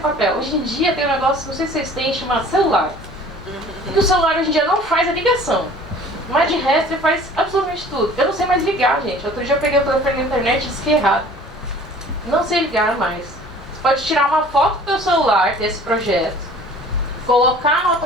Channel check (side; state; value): both; normal; correlation 0.48